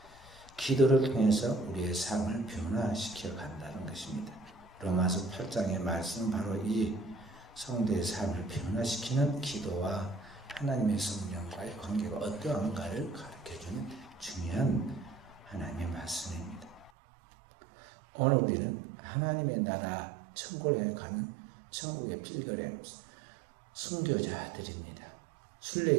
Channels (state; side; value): drops out; left; at 16.9 s